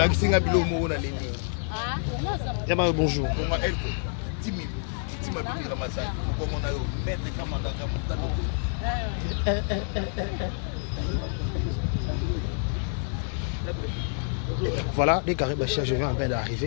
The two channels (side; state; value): right; silent; 60 dB below the other